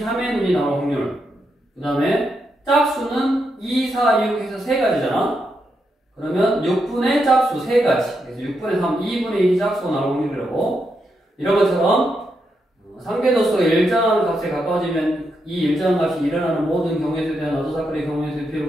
3의 눈이 나올 확률. 그 다음에 짝수는 2, 4, 6 해서 3가지잖아. 그러면 6분의 짝수 3가지. 그래서 6분의 3, 2분의 1이 짝수가 나올 확률이라고. 이런 것처럼 상대도수가 일정한 값에 가까워지면 이 일정한 값이 일어나는 모든 경우에 대한 어떤 사건의 경우에 대한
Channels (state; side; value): normal; both; correlation 0.82